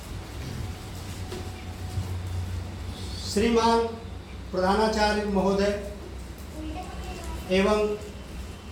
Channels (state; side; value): identical; both; correlation 1.00